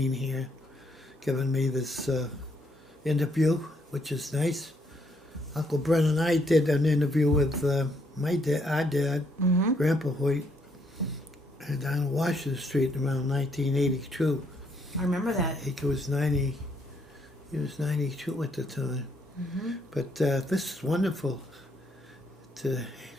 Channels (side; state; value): both; normal; correlation 0.72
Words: here giving me this interview, which is nice. Uncle Brent and I did an interview with my dad, our dad, Grandpa Hoyt, down Washington Street around 1982. I remember that. He was 90. He was 92 at the time. But this is wonderful to